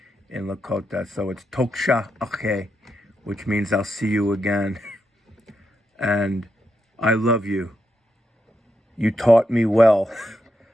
in Lakota, so it's Toksha Ake, which means I'll see you again. And I love you. You taught me well.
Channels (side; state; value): both; normal; correlation 0.83